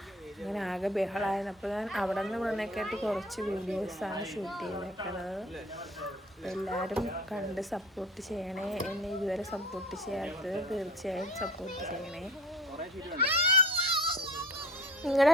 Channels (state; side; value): normal; both; correlation 0.45